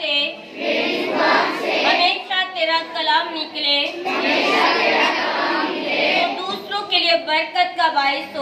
से हमेशा तेरा कलाम निकले, तो दूसरों के लिए बरकत का बाइस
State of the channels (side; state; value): both; identical; correlation 1.00